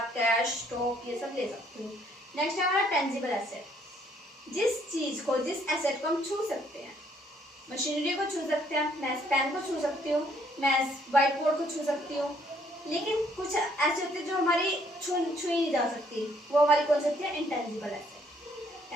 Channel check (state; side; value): normal; both; correlation 0.66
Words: कैश, स्टॉक ये सब ले सकते हो। नेक्स्ट है हमारा टेंजिबल एसेट। जिस चीज को, जिस एसेट को हम छू सकते हैं, मशीनरी को छू सकते हैं, मैं पेन को छू सकती हूँ, मैं व्हाइट बोर्ड को छू सकती हूँ, लेकिन कुछ ऐसे होते हैं जो हमारी छुई नहीं जा सकती, वो हमारी कौन सी होती है? Intangible asset.